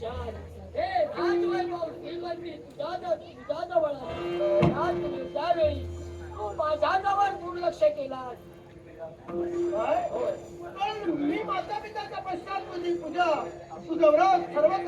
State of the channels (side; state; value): both; identical; correlation 1.00